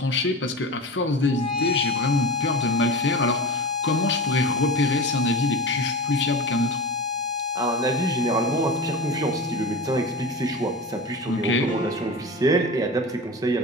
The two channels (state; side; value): normal; both; correlation 0.29